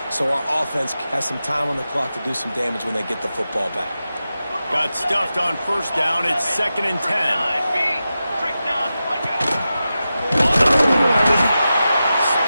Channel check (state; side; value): inverted; both; correlation -0.92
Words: so our offense has some time on the clock to do some damage when they get the football back. Got stuffed on first down. It's 2nd and 10.